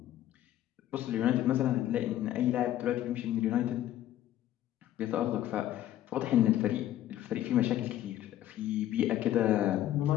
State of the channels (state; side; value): quieter; right; 12.8 dB